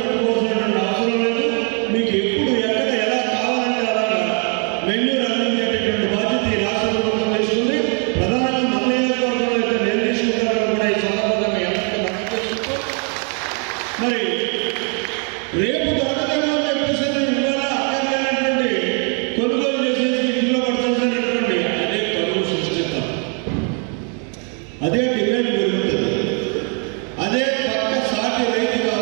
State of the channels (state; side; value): quieter; left; 39.0 dB